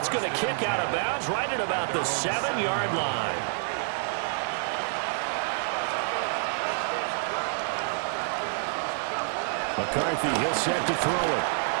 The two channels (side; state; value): left; silent; digital silence